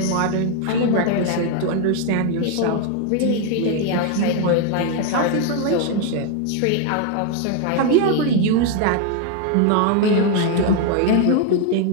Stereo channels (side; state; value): both; different; correlation 0.01